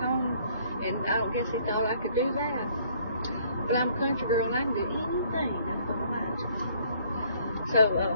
And I don't guess he thought I could do that. But I'm a country girl, and I can do anything I put my mind to. So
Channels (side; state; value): both; inverted; correlation -0.62